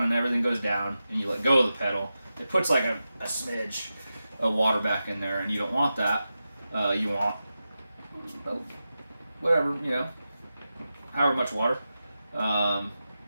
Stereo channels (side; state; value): both; inverted; correlation -0.91